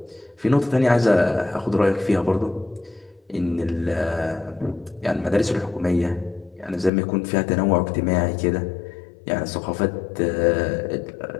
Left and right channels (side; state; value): right; drops out; at 6.9 s